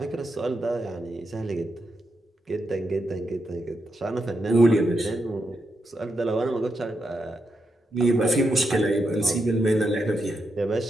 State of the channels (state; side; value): normal; both; correlation 0.84